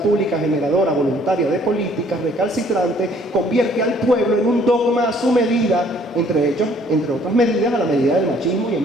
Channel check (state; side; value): normal; both; correlation 0.60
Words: generadora voluntaria de políticas recalcitrantes convierte al pueblo en un dogma a su medida, entre otras medidas, a la medida del machismo y